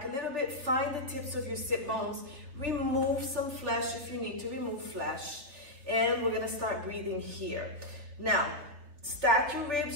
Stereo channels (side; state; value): left; late; 3.2 ms